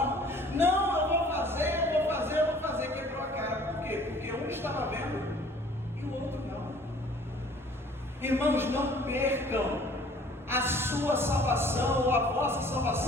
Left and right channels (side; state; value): both; normal; correlation 0.53